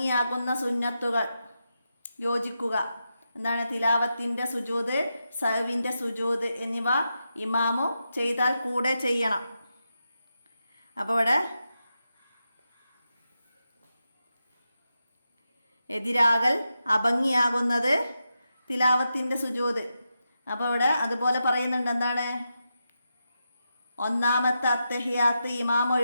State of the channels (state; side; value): inverted; both; correlation -0.88